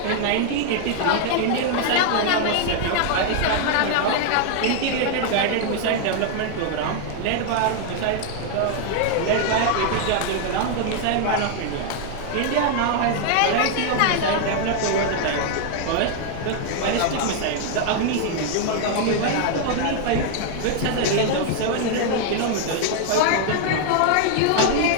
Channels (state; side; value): different; both; correlation 0.00